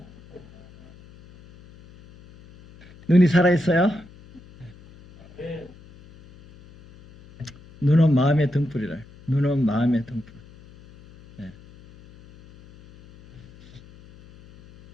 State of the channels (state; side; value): noise; left; hum, 23 dB below the sound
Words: 눈이 살아있어요? 눈은 마음의 등불이라. 눈은 마음의 등불.